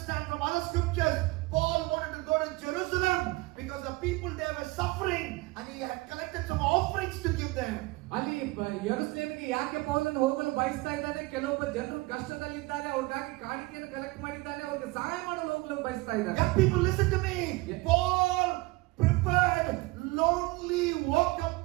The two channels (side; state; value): left; quieter; 22.4 dB